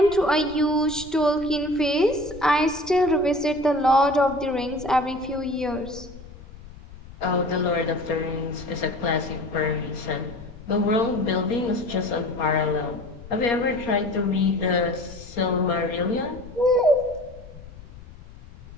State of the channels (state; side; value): noise; left; rumble, 17 dB below the sound